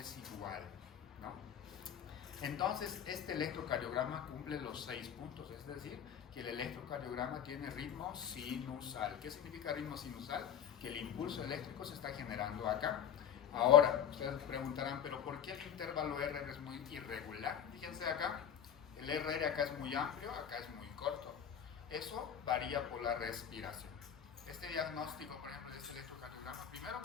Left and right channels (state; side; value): quieter; right; 8.8 dB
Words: igual, ¿no? Entonces este electrocardiograma cumple los 6 puntos, es decir, que el electrocardiograma tiene ritmo sinusal. ¿Qué significa ritmo sinusal? Que el impulso eléctrico se está generando acá. Ahora, ustedes preguntarán, ¿pero por qué el intervalo R es muy irregular? Fíjense acá. El RR acá es muy amplio, acá es muy corto. Eso varía por la respiración. Este diagnóstico, por ejemplo, de este electrocardiograma, primero